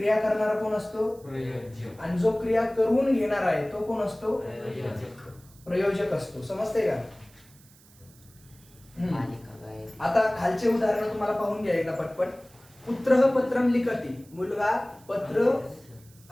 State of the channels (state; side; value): noise; right; hiss, 26 dB below the sound